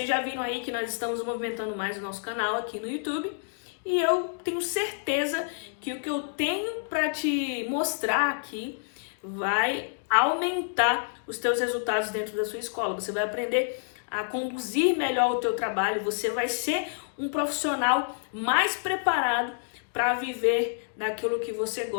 já viram aí que nós estamos movimentando mais o nosso canal aqui no YouTube e eu tenho certeza que o que eu tenho para te mostrar aqui vai aumentar os teus resultados dentro da sua escola. Você vai aprender a conduzir melhor o teu trabalho, você vai ser um profissional mais preparado para viver daquilo que você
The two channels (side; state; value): right; silent; digital silence